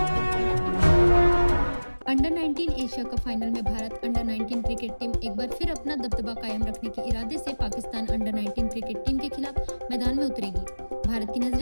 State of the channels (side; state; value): both; inverted; correlation -1.00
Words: अंडर 19 एशिया कप फाइनल में भारत अंडर 19 क्रिकेट टीम एक बार फिर अपना दबदबा कायम रखने के इरादे से पाकिस्तान अंडर 19 क्रिकेट टीम के खिलाफ मैदान में उतरेगी। भारत की